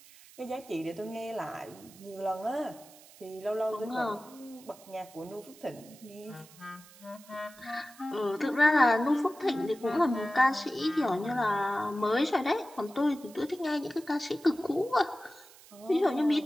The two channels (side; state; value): right; noise; hiss, 22 dB below the sound